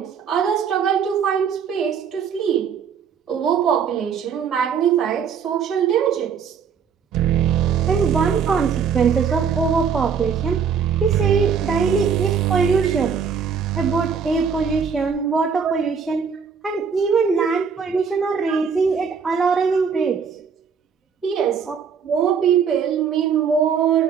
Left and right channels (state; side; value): quieter; left; 6.6 dB